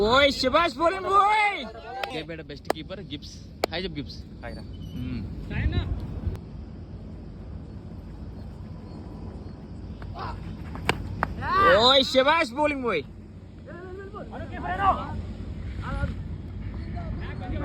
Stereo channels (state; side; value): identical; both; correlation 1.00